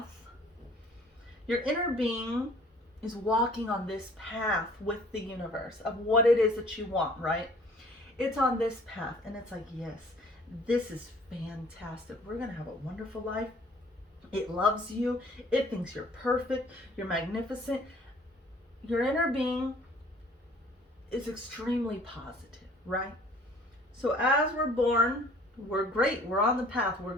Your inner being is walking on this path with the universe of what it is that you want, right? It's on this path and it's like, yes, this is fantastic. We're going to have a wonderful life. It loves you. It thinks you're perfect. You're magnificent. Your inner being is extremely positive, right? So as we're born, we're great. We're on the path. We're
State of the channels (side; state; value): both; normal; correlation 0.53